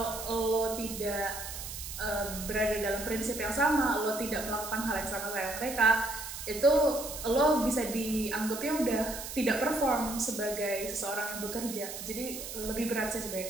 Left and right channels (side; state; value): right; noise; hiss, 8 dB below the sound